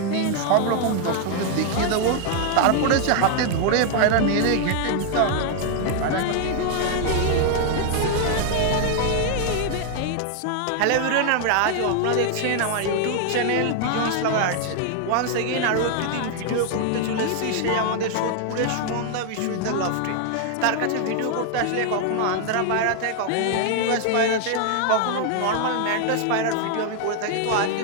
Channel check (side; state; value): both; different; correlation 0.00